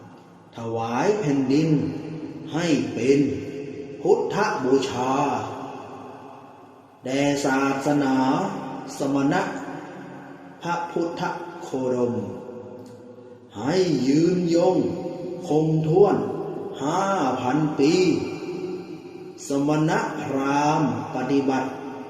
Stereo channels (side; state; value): both; identical; correlation 1.00